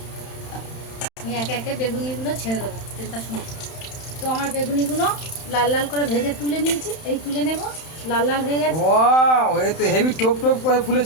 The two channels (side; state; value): right; late; 31 ms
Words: আমি একে একে বেগুনিগুলো ছেড়ে দেবো তেলটা শুনে। তো আমার বেগুনিগুলো লাল লাল করে ভেজে তুলে নিয়েছি, এই তুলে নেব। লাল লাল হয়ে গেছে। ওয়াও, এ তো হেভি টপ টপ করে